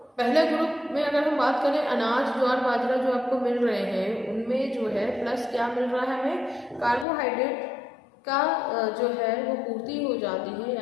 पहले ग्रुप में अगर हम बात करें अनाज, ज्वार, बाजरा जो आपको मिल रहे हैं, उनमें जो है प्लस क्या मिल रहा है, हमें कार्बोहाइड्रेट का जो है वो पूर्ति हो जाती है,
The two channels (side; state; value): right; drops out; at 7.1 s